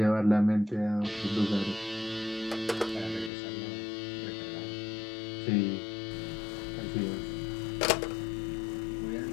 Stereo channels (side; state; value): right; drops out; at 3.3 s